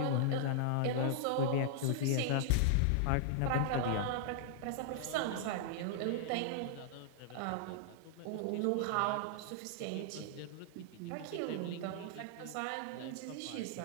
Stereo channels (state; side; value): different; both; correlation -0.01